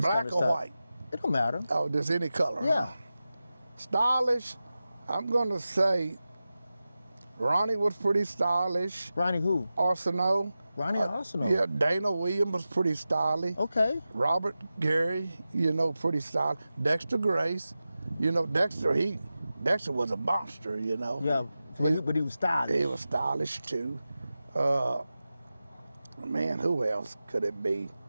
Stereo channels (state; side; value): inverted; both; correlation -0.94